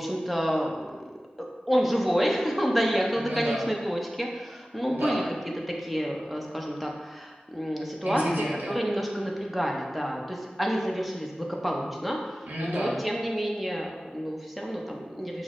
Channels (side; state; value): both; normal; correlation 0.96